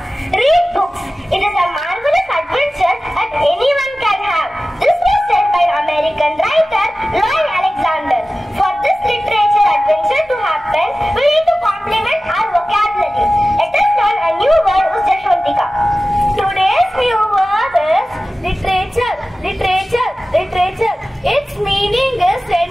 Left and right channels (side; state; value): both; normal; correlation 0.96